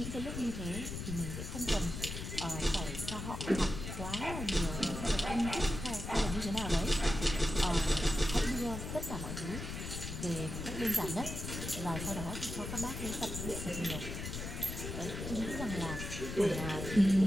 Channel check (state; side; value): noise; left; rumble, 6 dB below the sound